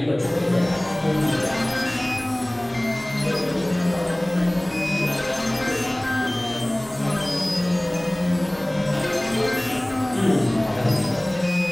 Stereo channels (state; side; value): noise; left; hum, 28 dB below the sound